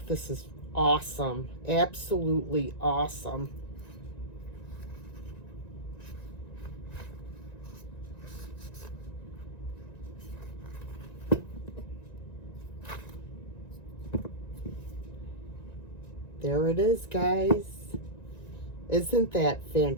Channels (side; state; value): right; late; 1.9 ms